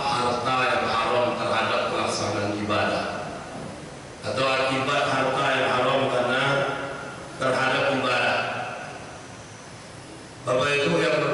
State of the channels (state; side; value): identical; both; correlation 1.00